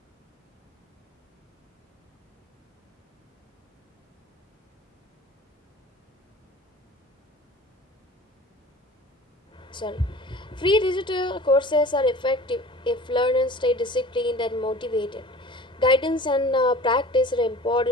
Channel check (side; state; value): both; normal; correlation 0.43